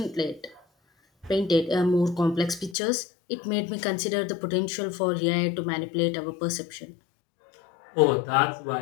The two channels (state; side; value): drops out; right; at 2.8 s